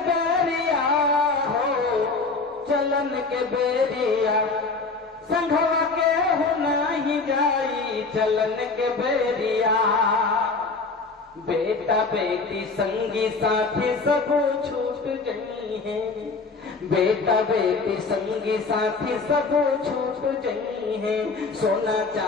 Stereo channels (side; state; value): right; quieter; 4.1 dB